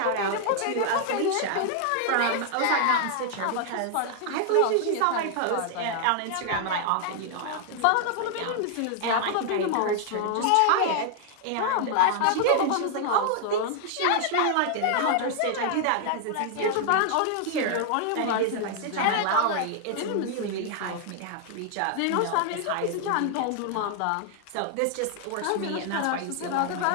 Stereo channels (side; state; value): both; different; correlation 0.00